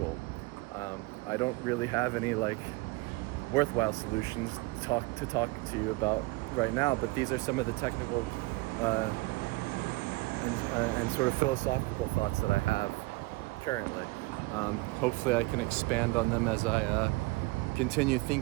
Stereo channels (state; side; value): quieter; left; 23.5 dB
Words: I don't really have any worthwhile solutions to talk to you about right now, but these are some of the technical and sort of philosophical thoughts that I have currently. Hopefully I can expand on them as I continue